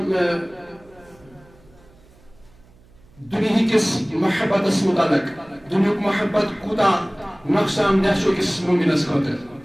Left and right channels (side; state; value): right; noise; hum, 28 dB below the sound